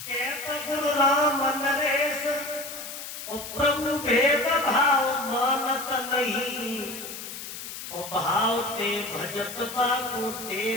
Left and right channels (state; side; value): noise; left; hiss, 9 dB below the sound